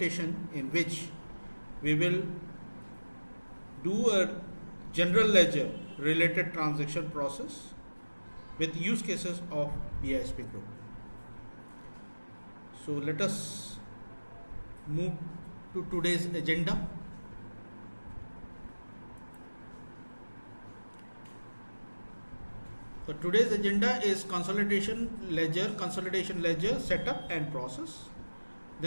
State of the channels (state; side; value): inverted; both; correlation -1.00